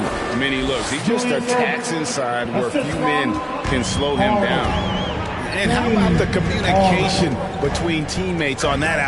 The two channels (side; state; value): both; identical; correlation 1.00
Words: many looks. He just attacks inside where few men can slow him down. And how about the communication between teammates on that